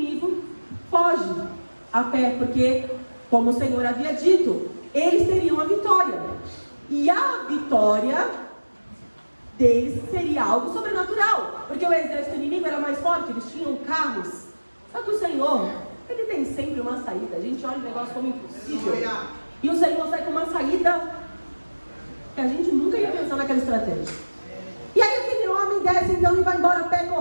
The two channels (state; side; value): inverted; both; correlation -1.00